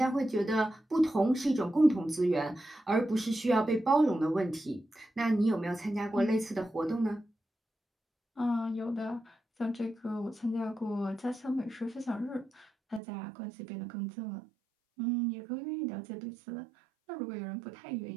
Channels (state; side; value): drops out; left; at 13.0 s